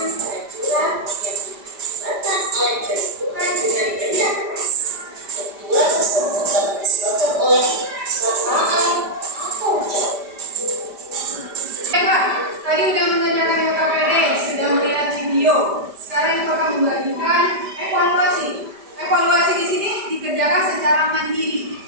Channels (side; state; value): left; late; 5.0 ms